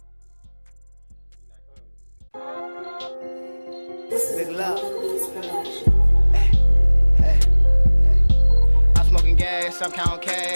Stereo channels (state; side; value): inverted; both; correlation -1.00